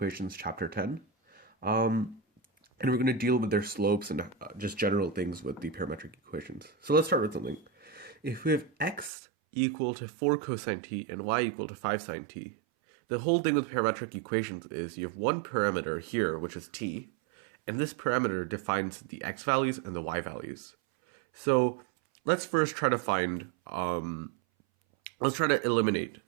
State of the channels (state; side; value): drops out; left; at 9.1 s